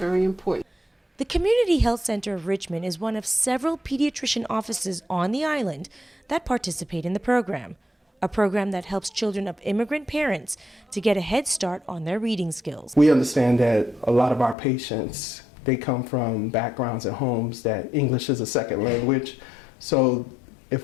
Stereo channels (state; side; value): drops out; right; at 14.6 s